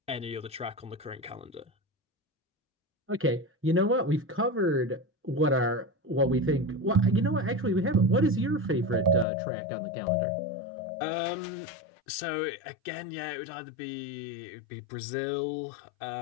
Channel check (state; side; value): drops out; right; at 9.2 s